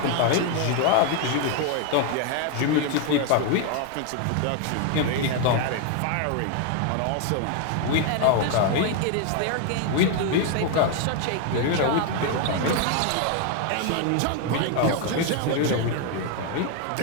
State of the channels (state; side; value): different; both; correlation 0.01